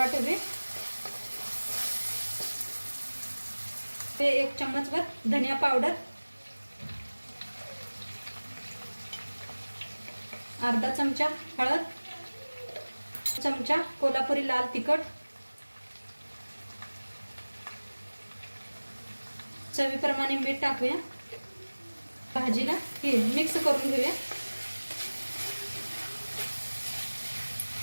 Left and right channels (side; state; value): both; inverted; correlation -1.00